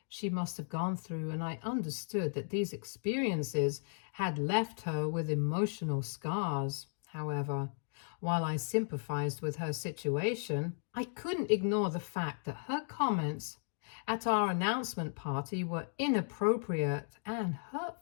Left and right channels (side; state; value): right; silent; digital silence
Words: she must have gone through, and I understood that these experiences had left her with emotional scars. However, while I sympathized with her situation, I couldn't ignore the fact that her comments at our announcement party were inappropriate and